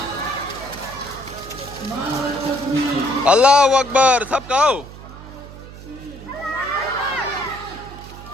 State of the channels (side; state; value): right; noise; hum, 15 dB below the sound